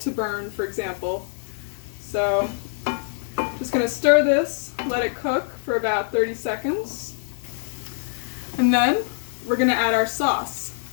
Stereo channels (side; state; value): right; silent; digital silence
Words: to burn, for example. So just going to stir this, let it cook for about 30 seconds. And then we're going to add our sauce.